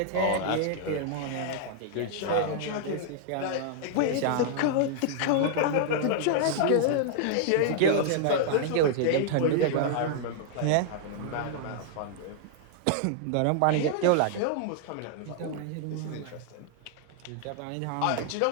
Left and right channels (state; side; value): different; both; correlation -0.01